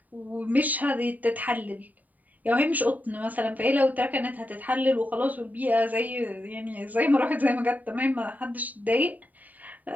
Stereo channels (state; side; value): late; left; 0.078 ms